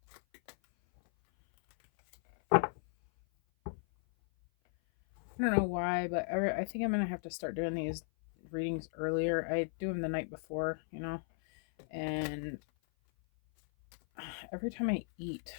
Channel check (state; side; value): silent; right; 54 dB below the other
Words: I don't know why, but I think I'm going to have to start doing these readings earlier. I do them the night before, you know, and every time I eat,